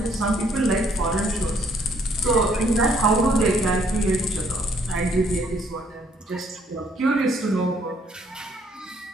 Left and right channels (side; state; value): both; normal; correlation 0.66